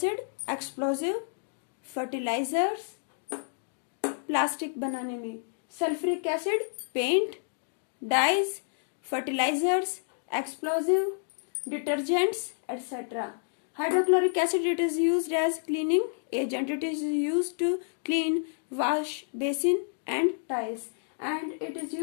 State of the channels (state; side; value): silent; right; digital silence